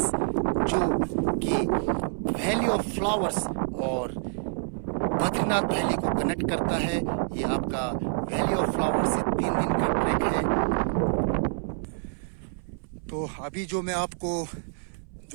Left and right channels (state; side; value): silent; left; 59 dB below the other